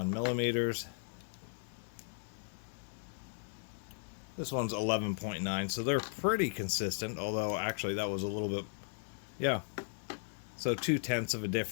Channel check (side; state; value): right; silent; digital silence